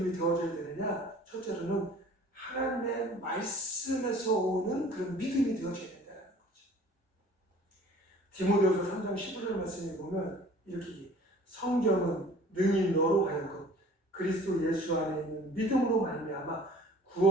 되어져야 되느냐? 첫째로는 하나님의 말씀에서 오는 그런 믿음이 되어져야 된다는 거죠. 디모데후서 3장 15절 말씀에 보면 이렇게 성경은 능히 너로 하여금 그리스도 예수 안에 있는 믿음으로 말미암아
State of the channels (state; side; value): normal; both; correlation 0.49